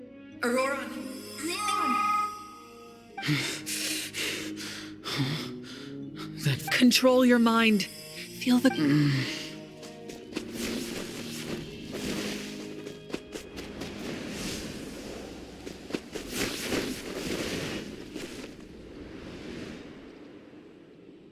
Auroran! Control your mind. Feel the...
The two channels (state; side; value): identical; both; correlation 1.00